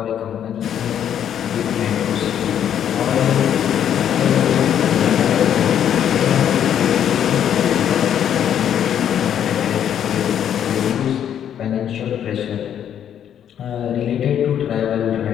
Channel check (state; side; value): quieter; right; 9.6 dB